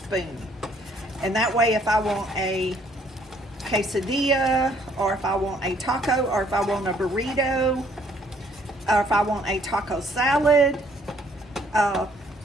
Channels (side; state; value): both; normal; correlation 0.64